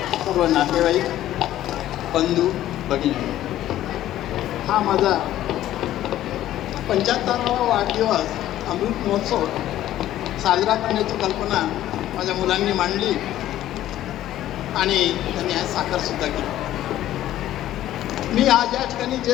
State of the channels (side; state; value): right; quieter; 13.3 dB